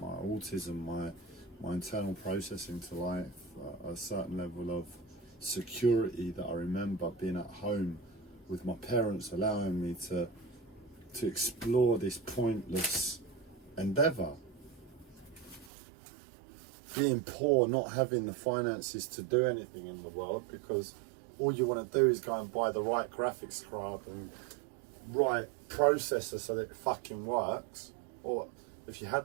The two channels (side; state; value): left; drops out; at 15.7 s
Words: autism, my internal processing to life, a certain level of security that I remember being at home with my parents, allowing me to explore this pointless endeavour. Being poor, not having the finances to do anything in the world, because all you want to do is go and buy the right graphics card and right processor so that it fucking works. Or if you